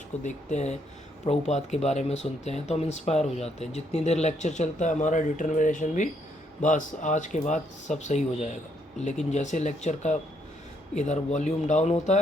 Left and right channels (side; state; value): both; normal; correlation 0.73